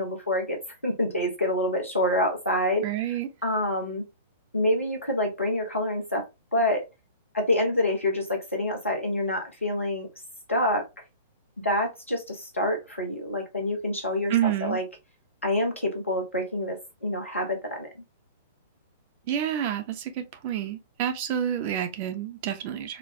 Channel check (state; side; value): inverted; both; correlation -0.36